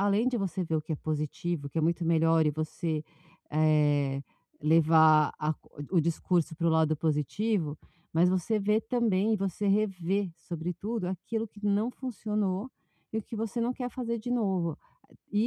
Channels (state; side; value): identical; both; correlation 1.00